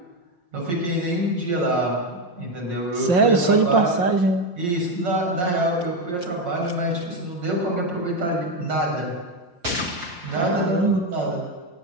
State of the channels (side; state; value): left; late; 5.6 ms